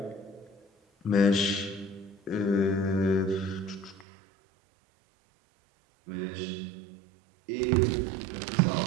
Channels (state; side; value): drops out; left; at 4.0 s